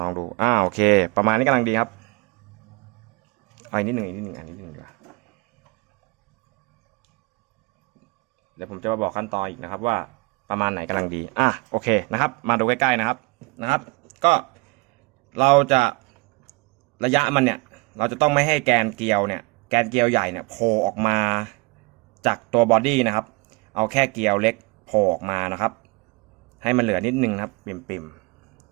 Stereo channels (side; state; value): left; quieter; 27.0 dB